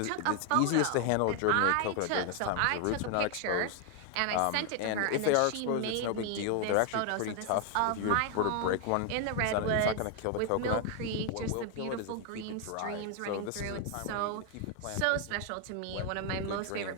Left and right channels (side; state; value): both; different; correlation 0.00